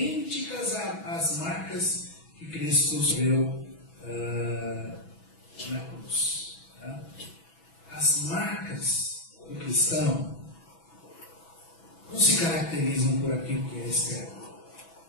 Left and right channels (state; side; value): late; right; 6.1 ms